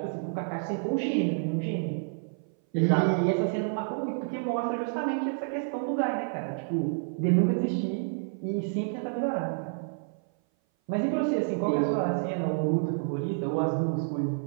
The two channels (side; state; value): left; silent; 57 dB below the other